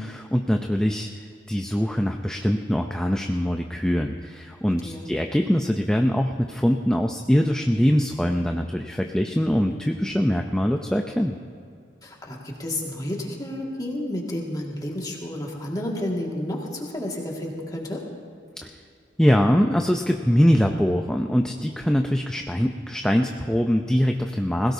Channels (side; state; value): both; normal; correlation 0.96